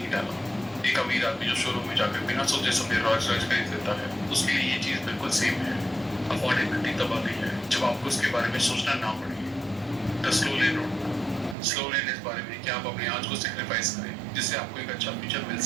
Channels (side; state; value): left; drops out; at 11.6 s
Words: डाला। एक अमीर आदमी जो शोरूम में जाकर बिना सोचे समझे रॉयल्स रॉयल्स खरीद लेता है, उसके लिए ये चीज बिल्कुल सेम है। अफोर्डेबिलिटी तब आती है जब आपको उसके बारे में सोचना ना पड़े। The slow lane road, slow लेन इस बारे में कि आप अपने आज को सेक्रीफाइस करें जिससे आपको एक अच्छा फ्यूचर मिल